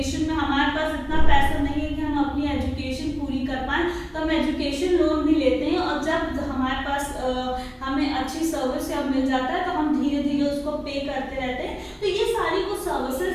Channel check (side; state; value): both; identical; correlation 1.00